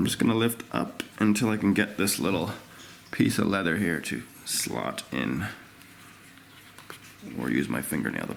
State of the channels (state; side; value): identical; both; correlation 1.00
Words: just gonna lift up until I can get this little piece of leather here to slot in, or use my fingernail to